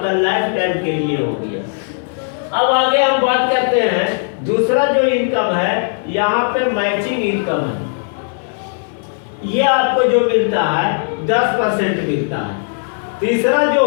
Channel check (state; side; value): silent; right; 60 dB below the other